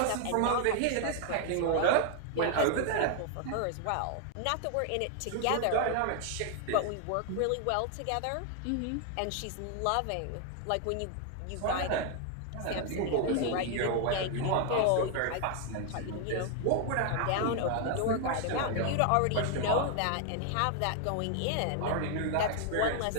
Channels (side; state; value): both; different; correlation 0.00